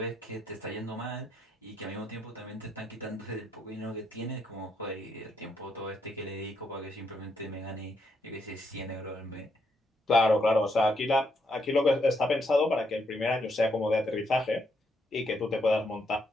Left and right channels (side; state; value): both; normal; correlation 0.76